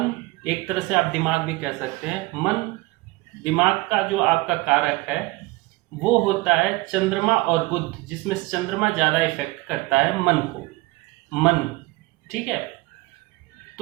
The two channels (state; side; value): quieter; left; 22.0 dB